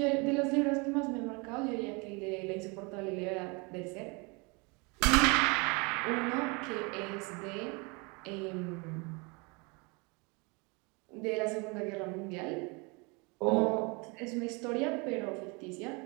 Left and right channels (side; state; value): left; quieter; 29.6 dB